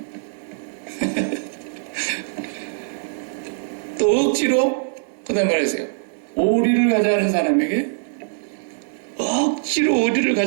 또 억지로 그 다음 말하세요. 오리를 가자는 사람에게 억지로 오리를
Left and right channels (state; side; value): silent; left; digital silence